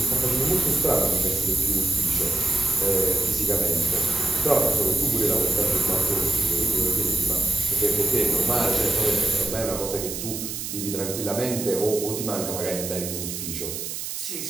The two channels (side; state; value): right; noise; hiss, 6 dB below the sound